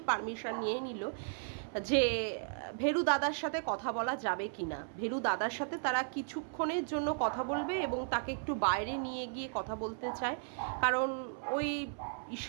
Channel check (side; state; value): left; silent; 54 dB below the other